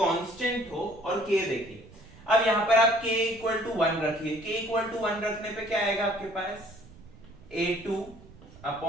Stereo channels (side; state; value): right; noise; rumble, 21 dB below the sound